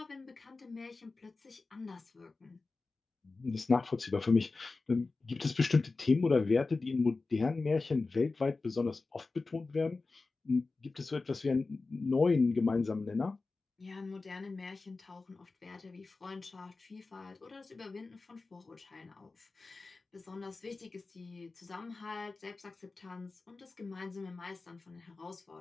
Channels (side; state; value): right; quieter; 3.8 dB